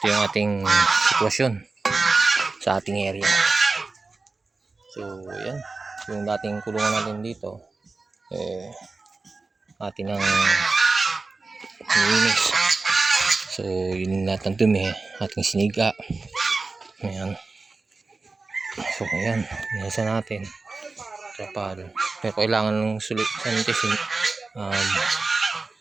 yung ating sitwasyon sa ating area. So yan, yung dating kulungan natin dito atin ang nilinis. So yun lahat ng dumi ating siniga. Ayan. So ayan, nasa natin trapal. Pero kailangan ng sanitisin,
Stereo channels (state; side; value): quieter; left; 3.8 dB